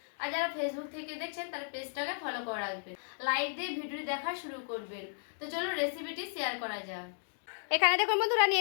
আর যারা ফেসবুক থেকে দেখছেন তারা পেজটাকে ফলো করে রাখবেন, লাইক দিয়ে ভিডিও দেখা শুরু করবেন। তো চলো রেসিপিটি শেয়ার করা যাক। এখানে দেখুন বন্ধুরা,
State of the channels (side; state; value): right; silent; digital silence